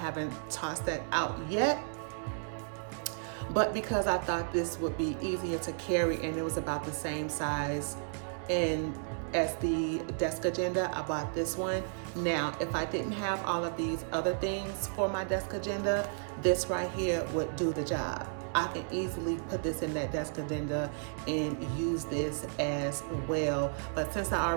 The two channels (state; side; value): silent; left; digital silence